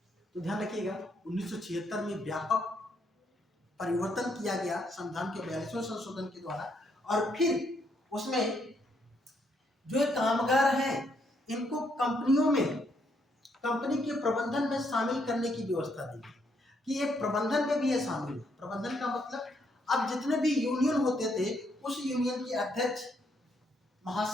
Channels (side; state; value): both; normal; correlation 0.74